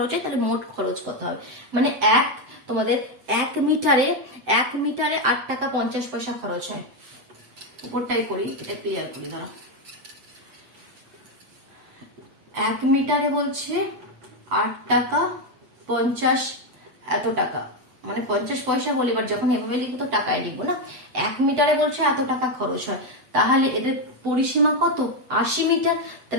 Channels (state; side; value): late; left; 8.0 ms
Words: হয় তাহলে মোট খরচ কত হবে, মানে তোমাদের 1 মিটারে 8 টাকা 50 পয়সা খরচ হয়। উপরটাই করি, এটা ক্লিয়ার করি দাঁড়াও। 1 মিটারে বলছে 8 টাকা 50 এত টাকা, মানে 50 পয়সা বলে, এবার যখন এভাবে লিখবো তো টাকায় লিখবো না। 1 মিটারে বলছে এত টাকা খরচ হয়, তাহলে এদের পরিসীমা কত, 80 মিটার।